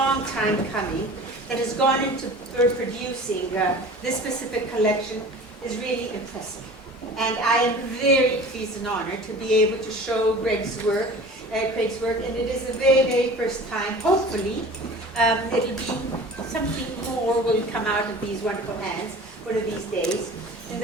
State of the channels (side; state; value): both; normal; correlation 0.41